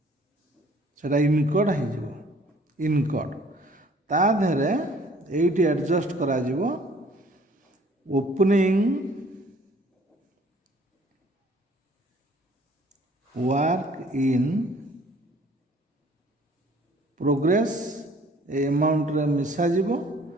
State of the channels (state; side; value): normal; both; correlation 0.56